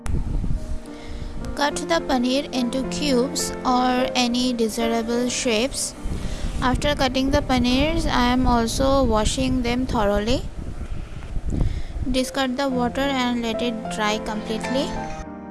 Cut the paneer into cubes or any desirable shapes. After cutting the paneers, I am also washing them thoroughly. Discard the water and let it dry completely.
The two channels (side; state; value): both; identical; correlation 1.00